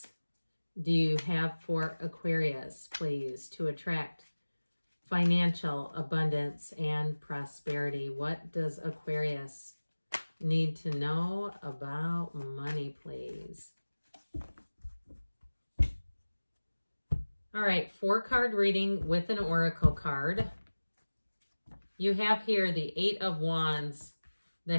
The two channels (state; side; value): inverted; both; correlation -1.00